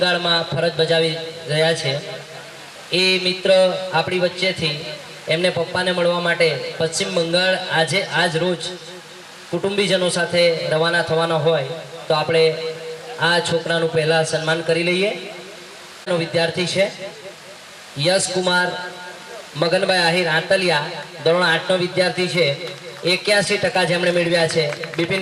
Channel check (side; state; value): both; identical; correlation 1.00